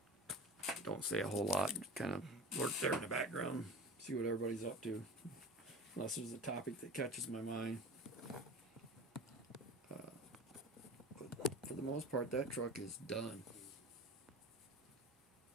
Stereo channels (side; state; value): both; normal; correlation 0.35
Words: Don't say a whole lot. Kind of lurk there in the background. See what everybody's up to. Unless there's a topic that catches my mind. But for the most part, that truck is done.